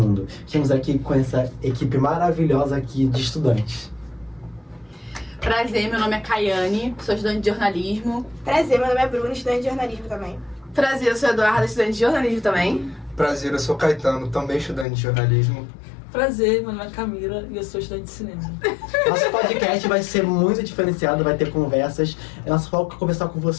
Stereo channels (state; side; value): drops out; right; at 14.9 s